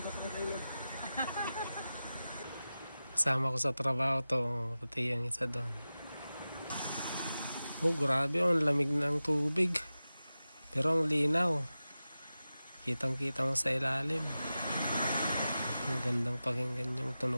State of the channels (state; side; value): inverted; both; correlation -0.94